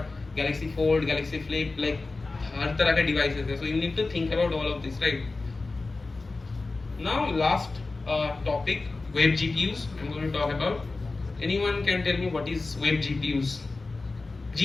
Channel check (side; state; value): right; quieter; 3.6 dB